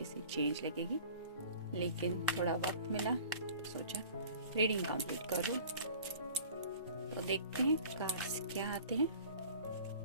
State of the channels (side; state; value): both; inverted; correlation -0.46